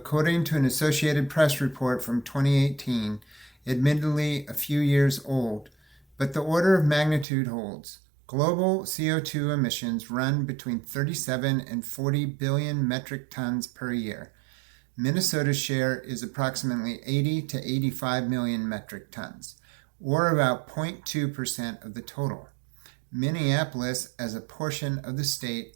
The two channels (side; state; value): left; drops out; at 7.2 s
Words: to an Associated Press report from 2018, admittedly a few years old, but the order of magnitude holds. Global CO2 emissions run between 37 and 40 billion metric tons per year. Minnesota's share is approximately 80 to 85 million metric tons, or about 0.2% of the total. Minneapolis, as a portion of the